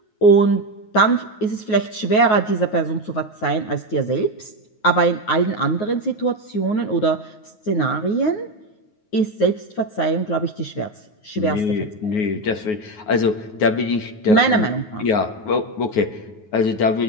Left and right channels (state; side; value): late; right; 9.4 ms